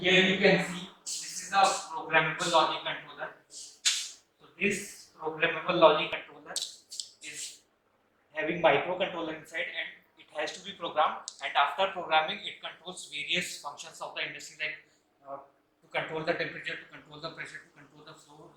here you can see this is a programmable logic controller. So this programmable logic controller is having microcontroller inside, and it has to be programmed, and after programming it controls various functions of the industry like to control the temperature, to control the pressure, to control the flow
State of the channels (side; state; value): both; identical; correlation 1.00